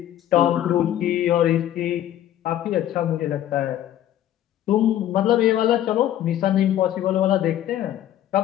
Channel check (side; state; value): right; quieter; 12.1 dB